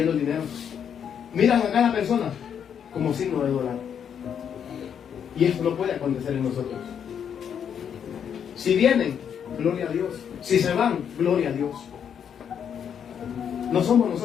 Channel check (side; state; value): right; quieter; 8.1 dB